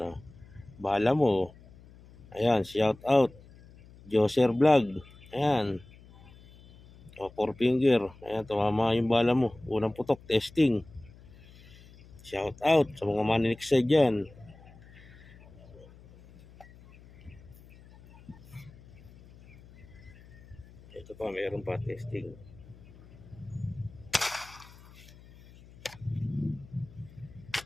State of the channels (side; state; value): left; noise; hum, 22 dB below the sound